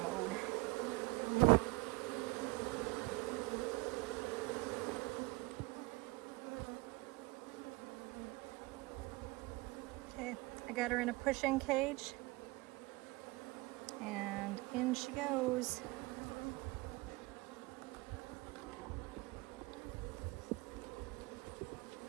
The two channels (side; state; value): left; quieter; 23.7 dB